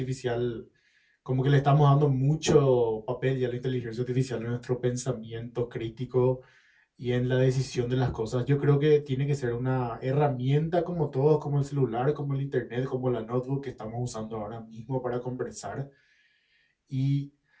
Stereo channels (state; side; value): identical; both; correlation 1.00